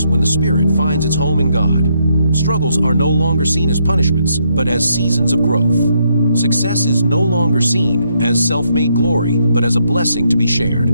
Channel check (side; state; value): both; inverted; correlation -0.75